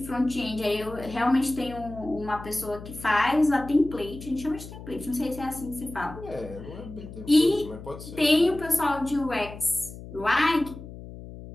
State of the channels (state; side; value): noise; left; hum, 13 dB below the sound